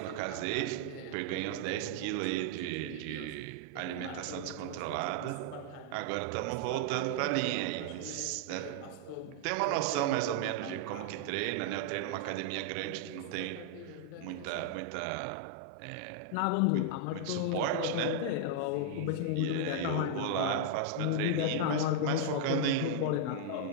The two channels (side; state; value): both; different; correlation -0.01